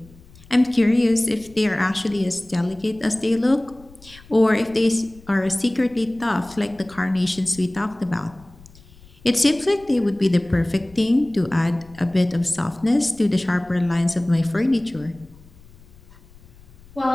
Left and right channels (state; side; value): noise; left; rumble, 24 dB below the sound